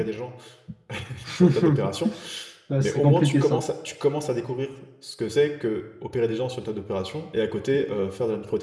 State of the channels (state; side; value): identical; both; correlation 1.00